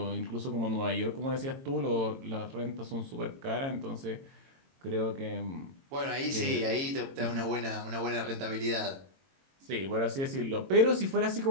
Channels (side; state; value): left; late; 22 ms